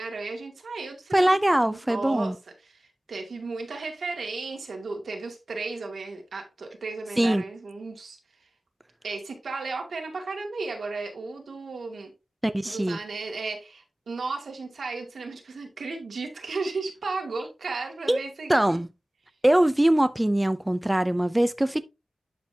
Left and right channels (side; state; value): both; normal; correlation 0.98